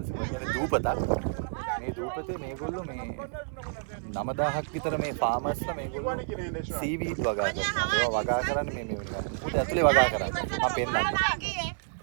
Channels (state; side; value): silent; left; 58 dB below the other